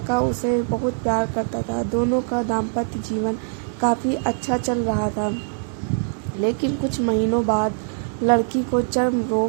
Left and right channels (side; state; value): left; silent; digital silence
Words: उसे बहुत प्यार करता था। दोनों का दाम्पत्य जीवन काफ़ी अच्छा चल रहा था। लेकिन कुछ महीनों बाद लड़की को चर्म